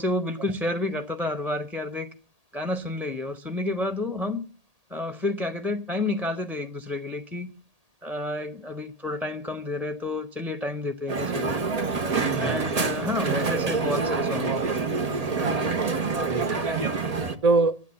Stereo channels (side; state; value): left; late; 1.8 ms